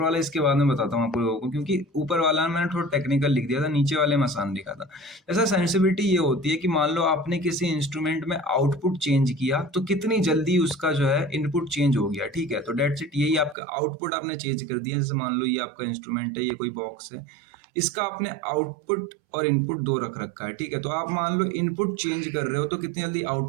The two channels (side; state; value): left; drops out; at 13.6 s